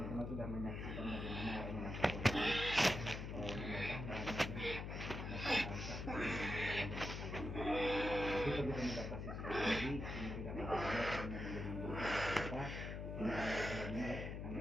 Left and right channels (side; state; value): left; noise; hum, 5 dB below the sound